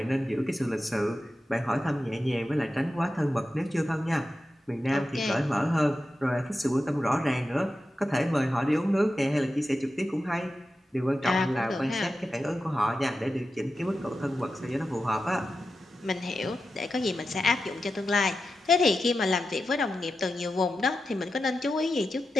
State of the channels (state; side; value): normal; both; correlation 0.90